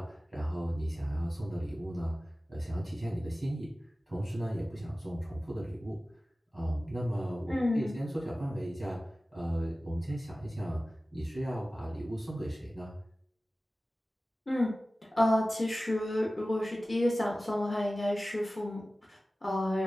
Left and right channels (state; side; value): normal; both; correlation 0.96